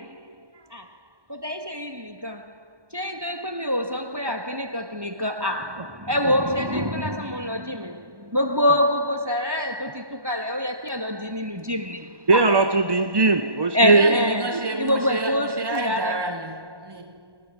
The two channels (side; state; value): left; late; 1.1 ms